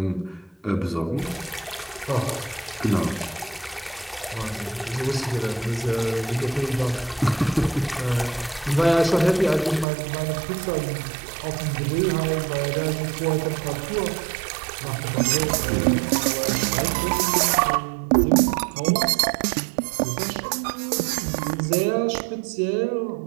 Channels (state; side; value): drops out; left; at 9.9 s